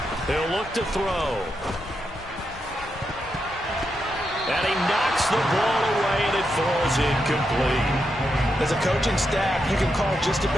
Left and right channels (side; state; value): both; normal; correlation 0.84